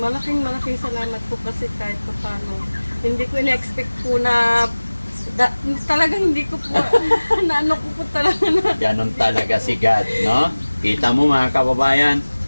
salamat po kasi kahit pa paano. Hindi ko in-expect po na, talagang hindi ko po, naano ko po talaga na. Ganon talaga si God, no? Kita mo mga kababayan,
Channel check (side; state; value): both; inverted; correlation -1.00